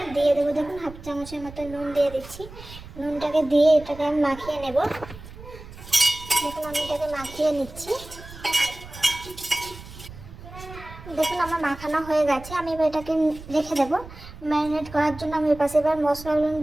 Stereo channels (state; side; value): noise; right; rumble, 16 dB below the sound